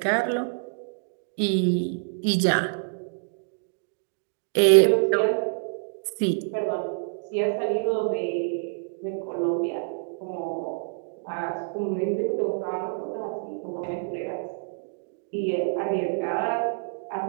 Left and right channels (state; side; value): silent; left; digital silence